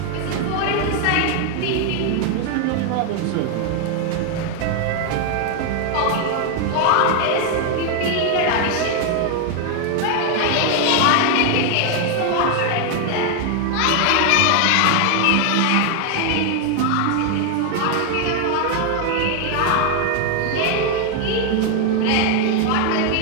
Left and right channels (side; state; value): both; different; correlation 0.01